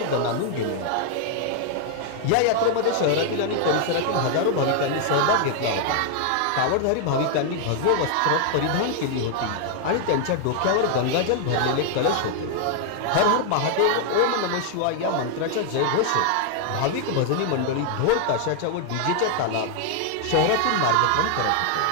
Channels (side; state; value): both; different; correlation 0.00